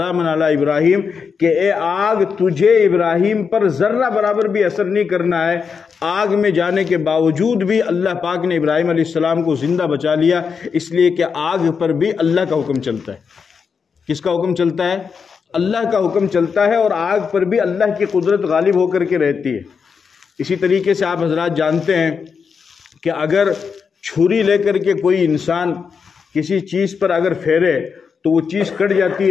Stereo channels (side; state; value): right; quieter; 5.9 dB